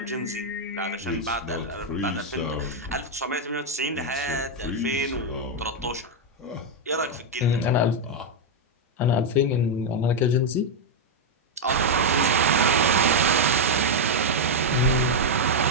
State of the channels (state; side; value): normal; both; correlation 0.00